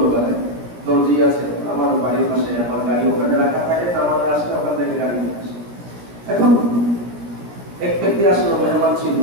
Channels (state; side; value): late; left; 17 ms